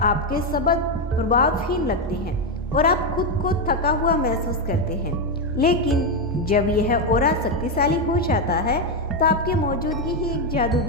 शब्द प्रभावहीन लगते हैं और आप खुद को थका हुआ महसूस करते हैं। लेकिन जब यह ऑरा शक्तिशाली हो जाता है तो आपकी मौजूदगी ही एक जादू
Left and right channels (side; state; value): both; normal; correlation 0.06